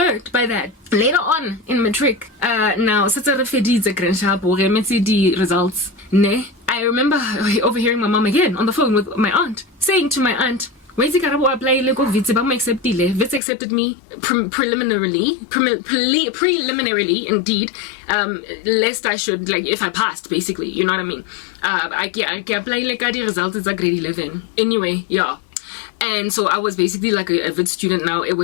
by that. Later on in matric, now, results, I remember overhearing my mom again on the phone with my aunt, saying to my aunt, Wits accepted me preliminarily, indeed, lest I should, like, if I passed, basically, you know what I mean? I apply like the results is a grade 11. Anyway, yeah. And so I was basically like a Wits student now. It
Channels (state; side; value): drops out; right; at 13.4 s